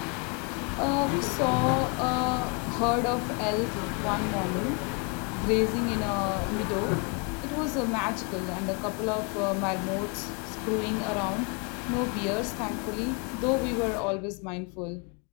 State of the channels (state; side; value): quieter; right; 34.1 dB